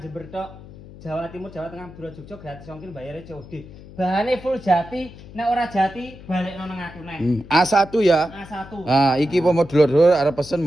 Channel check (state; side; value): noise; left; hum, 18 dB below the sound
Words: tok. Jawa Timur, Jawa Tengah, Madura, Jogja gratis ongkir bayarnya COD. Bahannya full jati, nek ora jati balik nang aku neh. A1 ya. A1. Ah, iki pomo dulur-dulur arep pesen